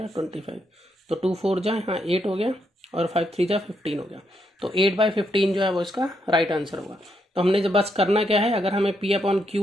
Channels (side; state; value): both; normal; correlation 0.78